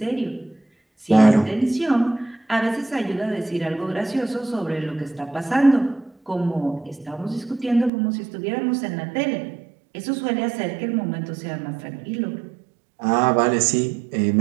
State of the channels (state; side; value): drops out; left; at 7.9 s